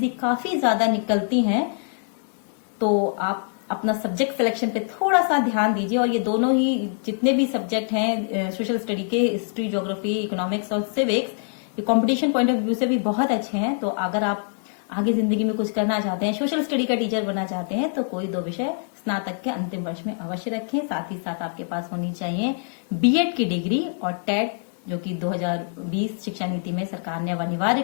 काफी ज्यादा निकलती हैं। तो आप अपना सब्जेक्ट सिलेक्शन पे थोड़ा सा ध्यान दीजिए। और ये दोनों ही जितने भी सब्जेक्ट हैं सोशल स्टडी के, हिस्ट्री, ज्योग्राफी, इकोनॉमिक्स और सिविक्स, ये कंपटीशन पॉइंट ऑफ व्यू से भी बहुत अच्छे हैं। तो अगर आप आगे जिंदगी में कुछ करना चाहते हैं, सोशल स्टडी का टीचर बनना चाहते हैं, तो कोई 2 विषय स्नातक के अंतिम वर्ष में अवश्य रखें। साथ ही साथ आपके पास होनी चाहिए बीएड की डिग्री और टेट, जो कि 2020 शिक्षा नीति में सरकार ने अब अनिवार्य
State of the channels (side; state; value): right; silent; 62 dB below the other